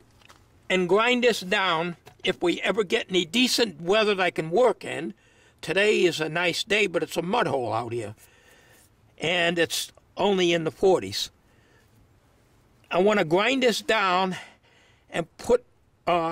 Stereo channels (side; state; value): both; identical; correlation 1.00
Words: and grind this down if we ever get any decent weather that I can work in. Today is a nice day, but it's a mud hole out here. And it's only in the 40s. I want to grind this down and put